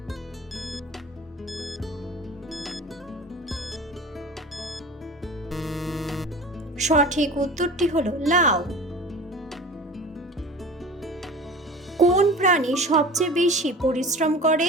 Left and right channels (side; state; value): both; normal; correlation 0.38